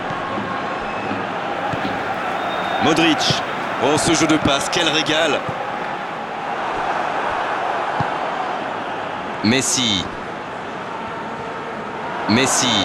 Modric. Oh, ce jeu de passe, quel régal! Messi. Messi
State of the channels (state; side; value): identical; both; correlation 1.00